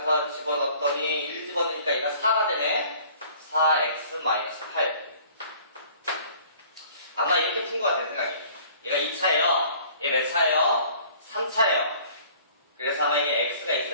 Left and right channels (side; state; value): both; inverted; correlation -0.53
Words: 집어넣었더니 1 집어넣으니까 얘가 4가 되네. 4x-8. 아마 이렇게 푼 것 같아요, 생각이. 얘가 2차예요. 얘 몇 차예요? 3차예요. 그래서 아마 이게 x가